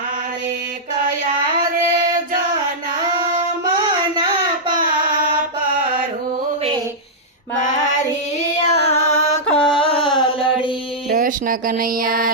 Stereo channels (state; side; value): normal; both; correlation -0.10